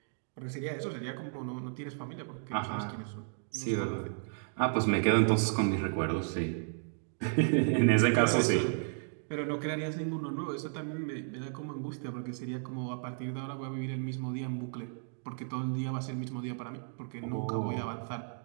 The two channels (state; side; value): silent; left; digital silence